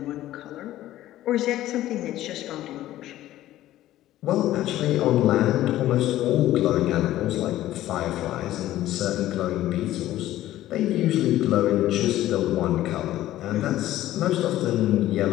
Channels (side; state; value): right; quieter; 14.3 dB